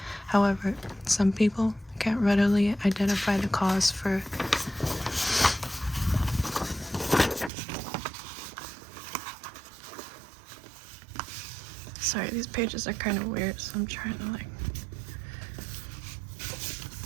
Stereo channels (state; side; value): drops out; left; at 7.5 s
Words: However, some people can't readily identify the cause for Sorry, these pages are kind of weird, so I'm trying to